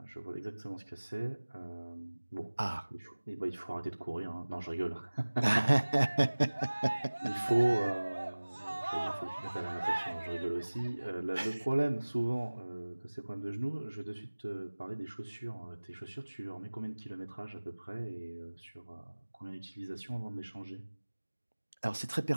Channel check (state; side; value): inverted; both; correlation -1.00